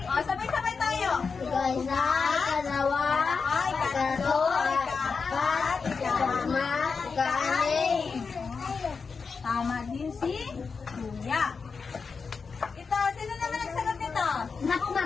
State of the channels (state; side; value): quieter; right; 5.1 dB